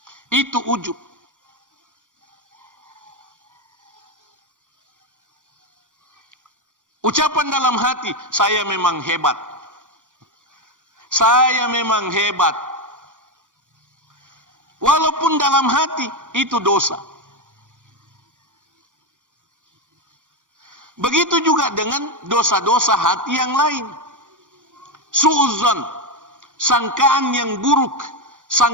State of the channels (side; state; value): left; late; 0.87 ms